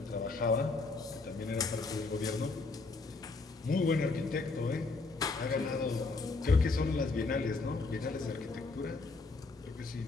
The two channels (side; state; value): right; quieter; 3.8 dB